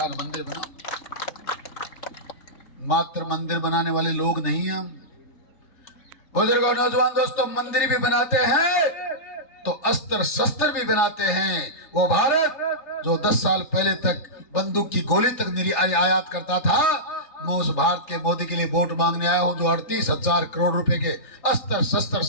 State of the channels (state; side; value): late; right; 3.4 ms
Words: मंदिर बनाऊं। मात्र मंदिर बनाने वाले लोग नहीं हैं। बुजुर्गों, नौजवान दोस्तों, मंदिर भी बनाते हैं तो अस्त्र शस्त्र भी बनाते हैं। वो भारत जो 10 साल पहले तक बंदूक की गोली तक आयात करता था, मैं उस भारत के मोदी के लिए वोट मांगने आया हूं, जो 38,000 करोड़ रुपए के अस्त्र शस्त्र